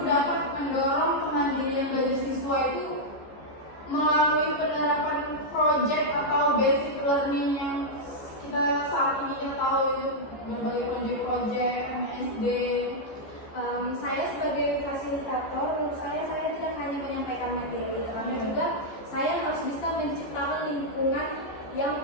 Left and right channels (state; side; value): late; right; 14 ms